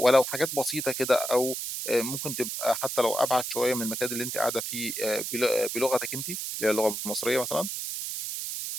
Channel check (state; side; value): noise; right; hiss, 4 dB below the sound